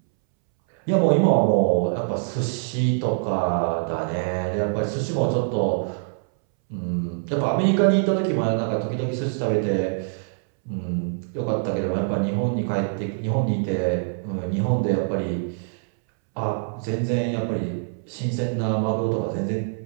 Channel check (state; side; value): silent; left; 63 dB below the other